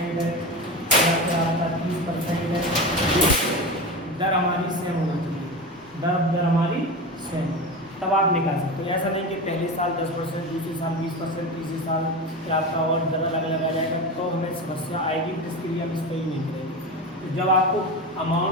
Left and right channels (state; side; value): normal; both; correlation 0.24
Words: है, या फिर आपका 30% है, दर हमारी सेम होना चाहिए, दर हमारी सेम, तब आप निकाल सकते हो। ऐसा नहीं कि पहले साल 10%, दूसरे साल 20%, तीसरे साल फिर आपका और दर अलग अलग आ जाएगा, तो हमें समस्या आएगी। इसके लिए हम इसको ही नहीं करेंगे। तो जब आपको